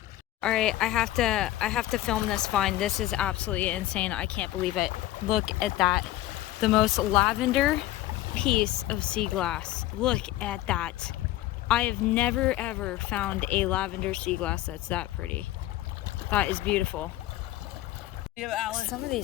All right, I have to film this find. This is absolutely insane. I can't believe it. Look at that. The most lavender piece of sea glass. Look at that. I have never ever found a lavender sea glass that's that pretty. That is beautiful. Some of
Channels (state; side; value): quieter; right; 15.2 dB